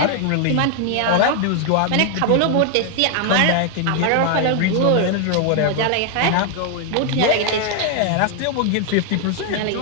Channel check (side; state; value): both; different; correlation 0.00